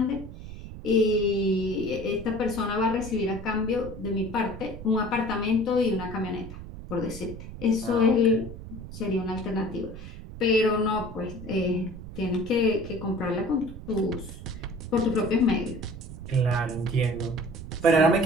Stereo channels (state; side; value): noise; right; rumble, 12 dB below the sound